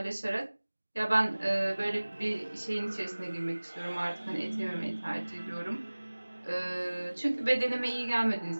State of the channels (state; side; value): inverted; both; correlation -1.00